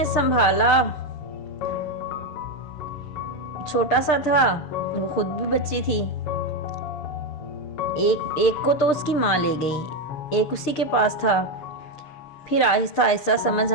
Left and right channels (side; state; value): right; late; 6.6 ms